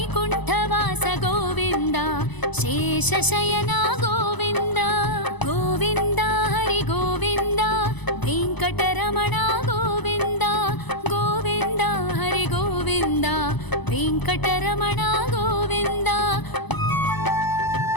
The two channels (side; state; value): right; late; 1.0 ms